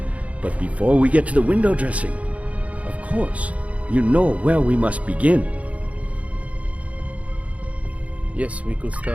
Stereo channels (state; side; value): late; left; 0.066 ms